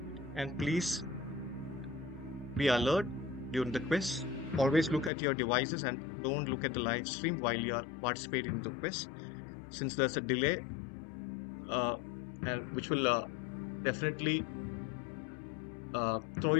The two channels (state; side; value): drops out; right; at 5.1 s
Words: And please be alert during the quiz. Always look at your devices and don't look at the live stream while you are participating in the quiz, since there's a delay, uh, and which will definitely throw